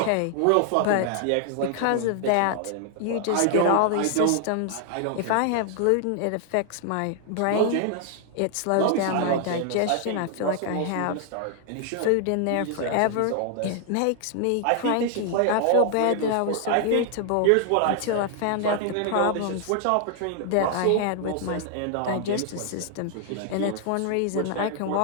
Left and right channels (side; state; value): both; different; correlation 0.00